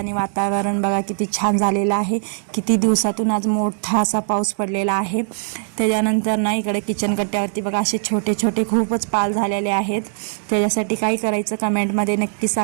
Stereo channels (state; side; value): silent; left; digital silence